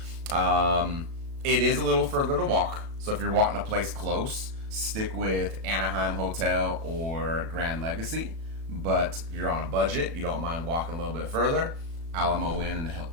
It is a little further to walk, so if you're wanting a place close, stick with Anaheim Hotel or Grand Legacy. But if you're on a budget, you don't mind walking a little bit further, Alamo Inn and the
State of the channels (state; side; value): late; left; 36 ms